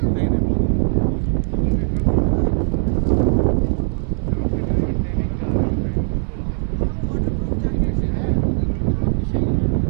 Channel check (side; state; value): left; silent; 66 dB below the other